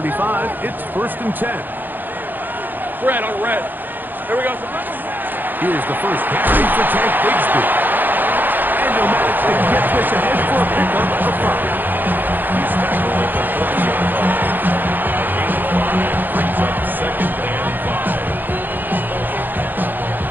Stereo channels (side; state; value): left; late; 0.089 ms